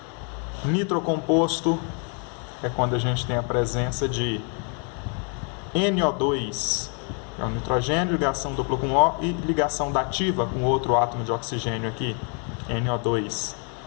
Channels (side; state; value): right; quieter; 39.4 dB